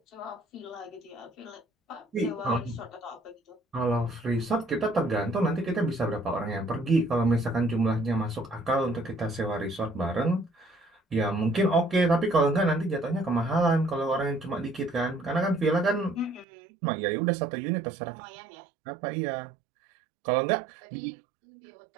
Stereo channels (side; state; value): left; drops out; at 16.4 s